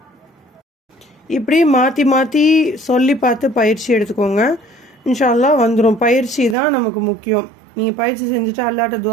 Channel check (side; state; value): left; drops out; at 6.6 s